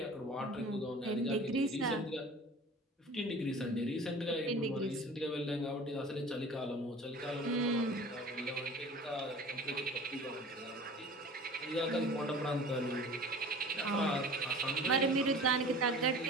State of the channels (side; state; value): both; normal; correlation 0.42